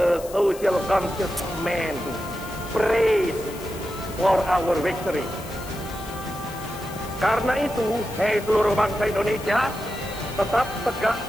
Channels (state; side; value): noise; left; hiss, 16 dB below the sound